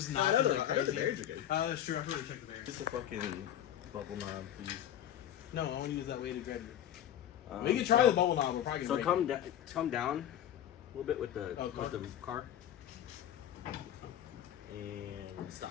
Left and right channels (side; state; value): right; quieter; 11.0 dB